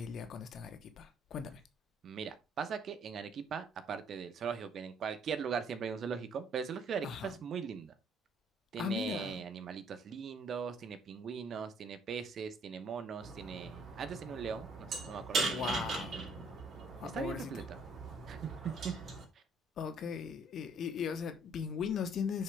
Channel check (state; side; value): normal; both; correlation 0.63